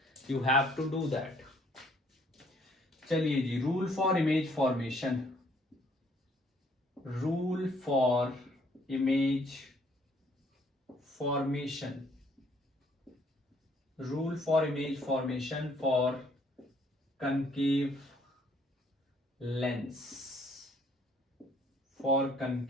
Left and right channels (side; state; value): both; normal; correlation 0.64